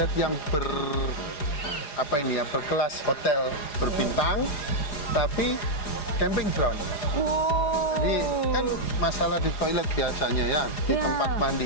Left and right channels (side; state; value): right; late; 4.9 ms